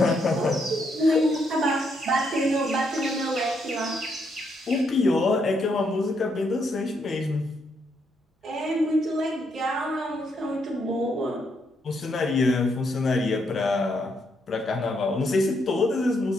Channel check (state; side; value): normal; both; correlation 0.76